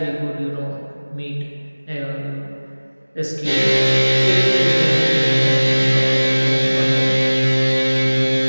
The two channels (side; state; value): both; inverted; correlation -1.00